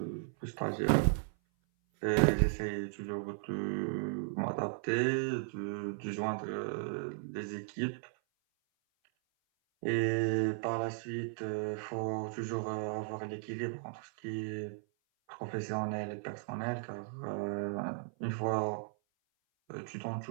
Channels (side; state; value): left; silent; 54 dB below the other